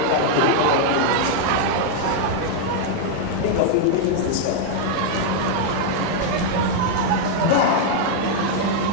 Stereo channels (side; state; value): both; different; correlation -0.01